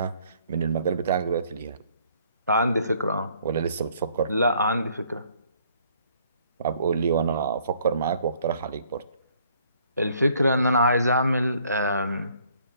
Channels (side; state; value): both; inverted; correlation -0.62